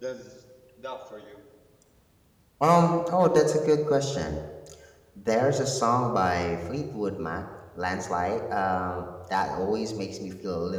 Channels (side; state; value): both; identical; correlation 1.00